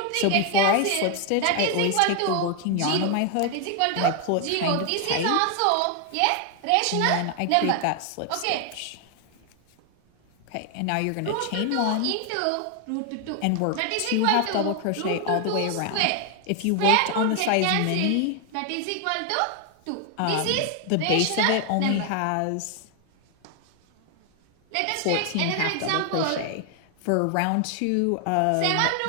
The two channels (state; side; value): different; both; correlation 0.00